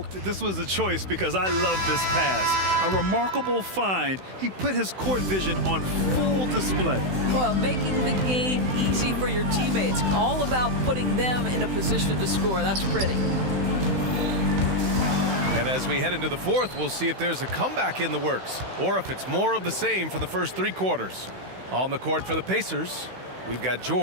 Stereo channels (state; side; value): late; left; 16 ms